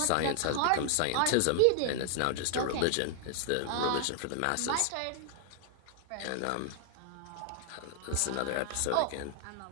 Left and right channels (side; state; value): both; different; correlation 0.00